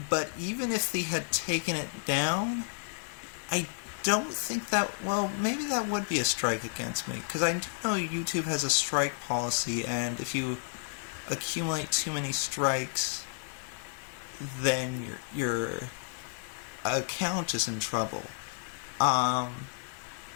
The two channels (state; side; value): silent; right; 57 dB below the other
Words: But even if they had taken it down, I don't think that, maybe that would be a strike against me, because I do know YouTube has a strike policy, and if you accumulate too many strikes, then your account is in trouble.